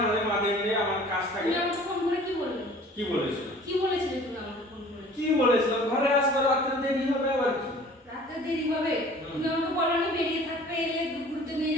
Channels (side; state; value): both; normal; correlation 0.48